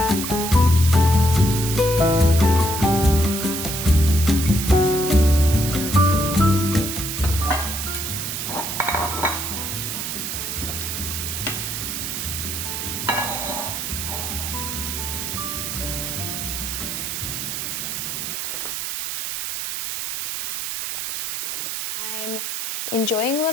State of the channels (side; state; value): right; noise; hiss, 3 dB below the sound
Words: I'm enjoying a